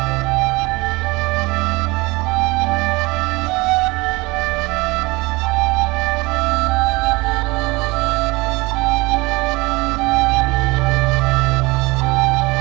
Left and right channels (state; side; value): quieter; left; 23.7 dB